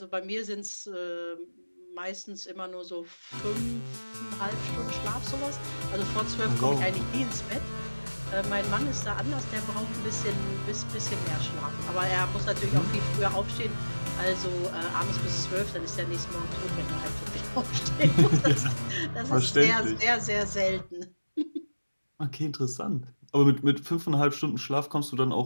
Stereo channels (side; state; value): both; inverted; correlation -1.00